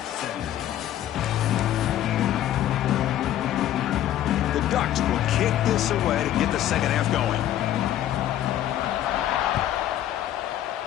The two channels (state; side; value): quieter; right; 12.2 dB